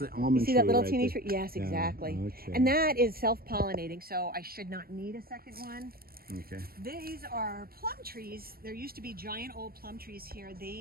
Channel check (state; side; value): late; left; 0.44 ms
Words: almond You see that tree little right teeny there. tree? Yes, Yeah, exactly. okay. And that is self-pollinating, so I should not need a second one. Okay. These are plum trees. There used to be giant old plum trees here.